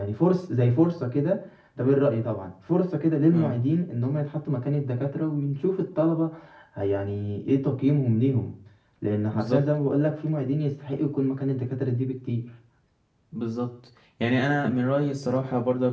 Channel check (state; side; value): identical; both; correlation 1.00